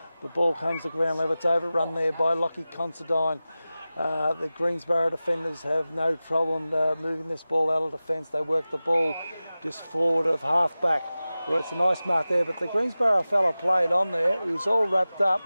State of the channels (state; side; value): inverted; both; correlation -0.96